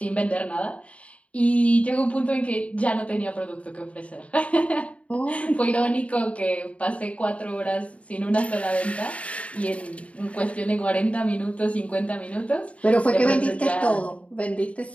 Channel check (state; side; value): late; right; 0.065 ms